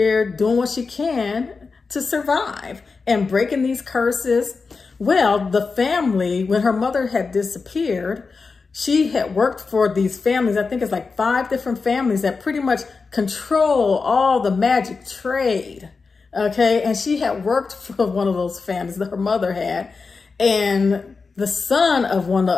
doing what she can to survive and breaking these curses. Well, the family, when her mother had disappeared, she had worked for these families. I think it's like 5 different families that pretty much control all the magic trade. Okay. And she had worked for one of those families that her mother had. And the son of one of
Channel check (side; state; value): right; quieter; 4.6 dB